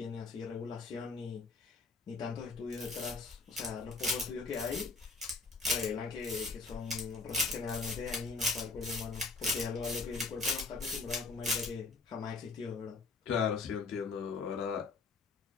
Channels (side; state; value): right; quieter; 4.0 dB